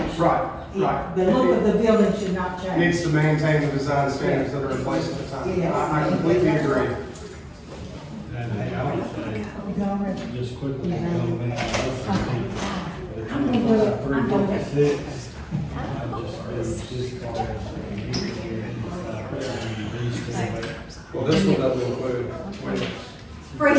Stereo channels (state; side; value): identical; both; correlation 1.00